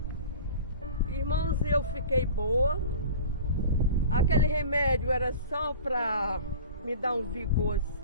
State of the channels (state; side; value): inverted; both; correlation -0.39